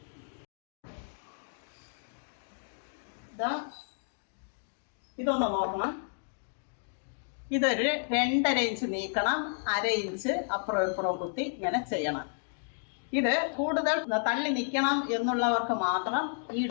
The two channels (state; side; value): silent; right; digital silence